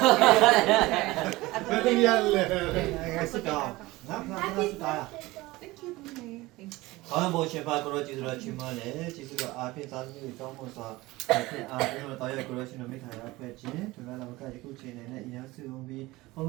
Happy New Year. Sit down. Sit down. Thank you Mummy Thank you ကောင်းဖို့ရှင်ပါကိုရောကျေးဇူးတော်ချီးမွမ်းတယ်ကျေးဇူးတော်အားဖြင့်သာသမီတွေကောင်းဖို့စွာအားဖြင့်တော်ရကိုရောရှင်တော်မိခါရဖွဲ့ခြင်းဒီမှာလည်းကယခုချိန်နဲ့အရင်စုံပြီးဘုံ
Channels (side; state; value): left; quieter; 20.0 dB